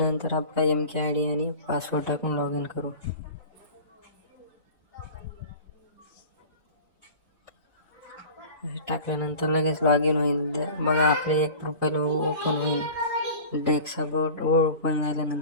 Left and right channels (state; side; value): inverted; both; correlation -0.38